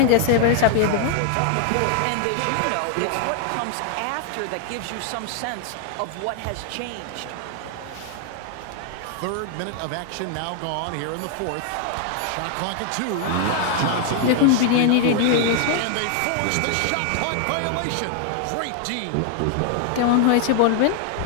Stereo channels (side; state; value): both; different; correlation 0.00